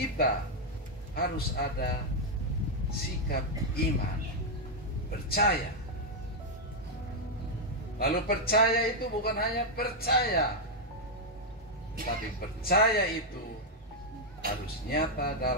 harus ada sikap iman, percaya. Lalu percaya itu bukan hanya percaya, tapi percaya itu harus nyata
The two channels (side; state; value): both; normal; correlation -0.01